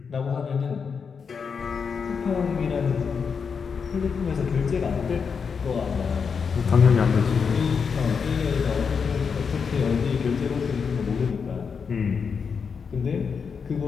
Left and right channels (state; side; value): quieter; right; 6.0 dB